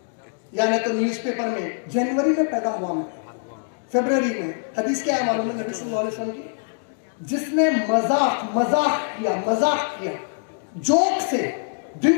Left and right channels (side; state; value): right; silent; digital silence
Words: یعنی تو نیوز پیپر میں جنوری میں پیدا ہوا میں، فیبروری میں. حدیث کیا ہے معلوم ہے نبی صلی اللہ علیہ وسلم کی؟ جس نے مذاق کیا جوک سے،